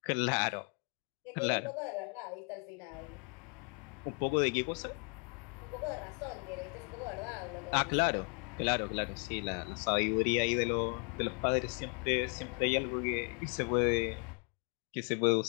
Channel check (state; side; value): quieter; right; 38.3 dB